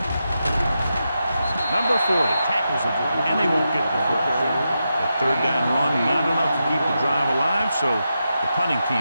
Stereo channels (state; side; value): inverted; both; correlation -0.87